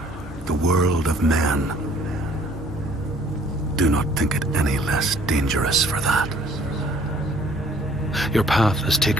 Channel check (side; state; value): both; normal; correlation 0.58